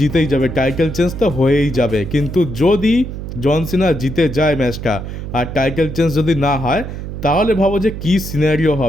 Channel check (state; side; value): noise; right; hum, 8 dB below the sound